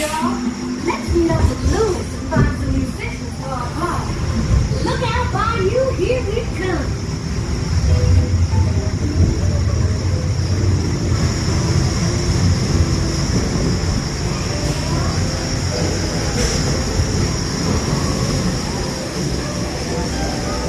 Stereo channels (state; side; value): identical; both; correlation 1.00